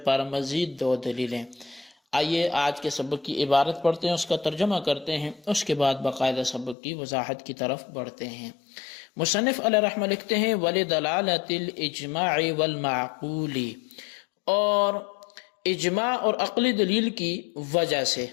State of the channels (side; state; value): right; drops out; at 6.8 s